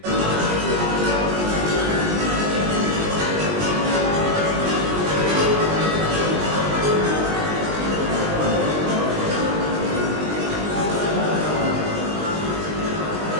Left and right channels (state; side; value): late; left; 20 ms